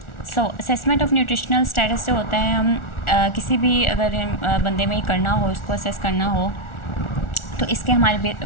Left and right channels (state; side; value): late; right; 1.4 ms